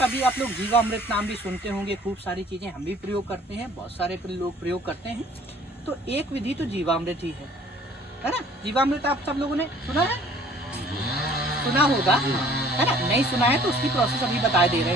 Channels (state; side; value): normal; both; correlation 0.54